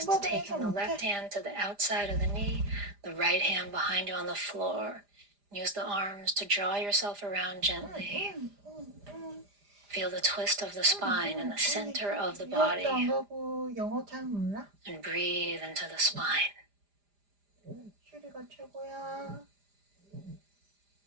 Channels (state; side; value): late; left; 4.9 ms